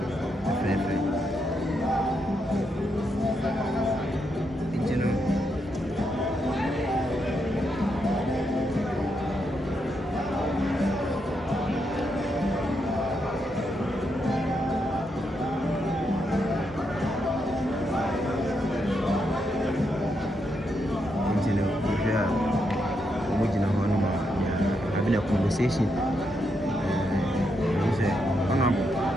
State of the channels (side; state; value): both; normal; correlation 0.81